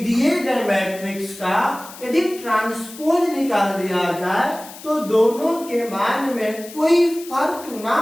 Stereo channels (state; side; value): noise; left; hiss, 16 dB below the sound